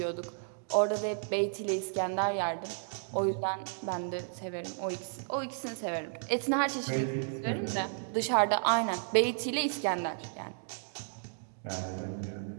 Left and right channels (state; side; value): silent; left; digital silence